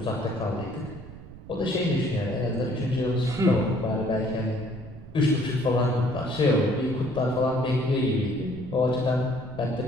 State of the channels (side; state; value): right; noise; rumble, 15 dB below the sound